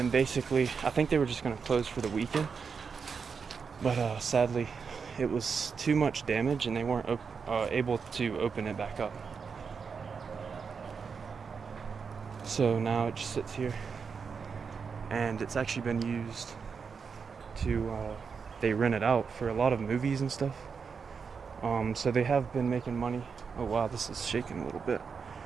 basically, I think they were just going to close for the weekend, but sadly, it was too much damage and they weren't able to open it back up. So now it just sits here, and it's actually been used to, they rent it out for a lot of movies and stuff. So they have been making money. Oh wow, this is shaking a little bit.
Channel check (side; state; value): left; quieter; 5.8 dB